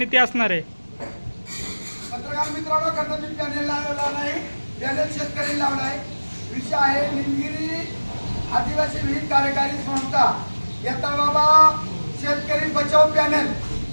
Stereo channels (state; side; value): inverted; both; correlation -1.00